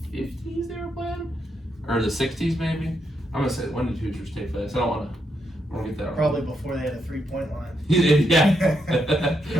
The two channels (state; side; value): normal; both; correlation 0.80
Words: 50s they were playing, or the 60s maybe. I'm gonna say, when did Hoosiers take place? I don't want to get that wrong. Probably before they had a 3-point line. Yeah.